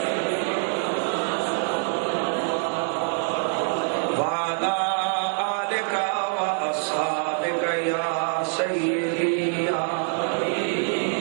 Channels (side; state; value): left; silent; 55 dB below the other